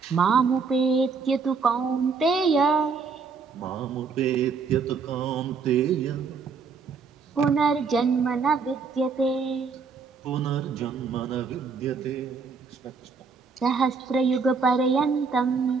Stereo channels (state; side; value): quieter; left; 5.1 dB